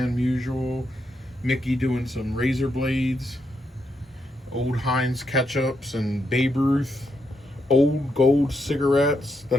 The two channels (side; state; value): both; normal; correlation 0.81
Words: Musial. Mickey doing some razor blades. Old Heinz ketchups and Babe Ruth. Old Gold cigarettes, the